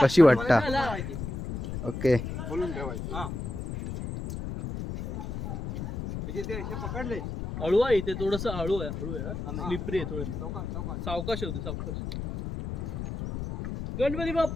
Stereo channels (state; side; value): noise; left; rumble, 6 dB below the sound